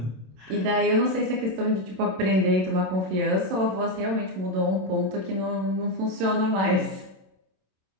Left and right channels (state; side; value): late; left; 27 ms